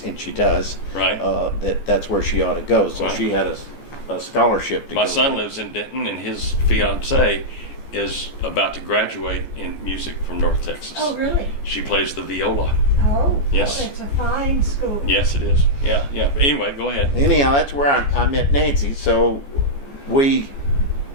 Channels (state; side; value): late; right; 14 ms